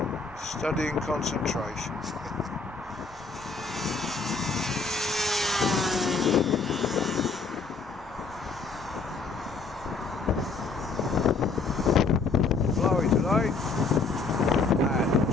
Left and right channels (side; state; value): right; quieter; 4.3 dB